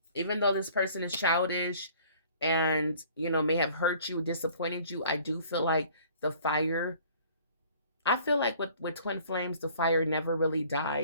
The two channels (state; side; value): inverted; both; correlation -0.53